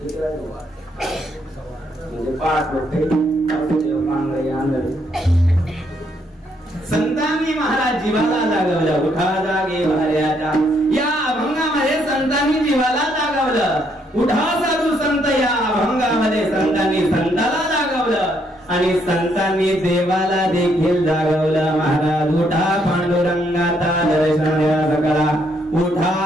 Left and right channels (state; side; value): normal; both; correlation 0.72